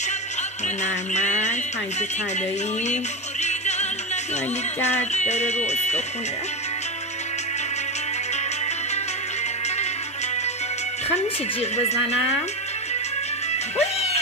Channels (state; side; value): normal; both; correlation 0.15